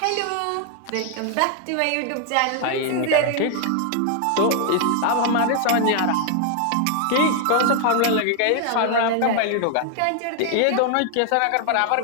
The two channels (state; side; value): different; both; correlation 0.00